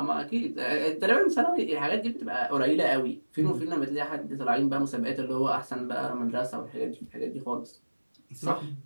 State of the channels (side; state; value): both; inverted; correlation -1.00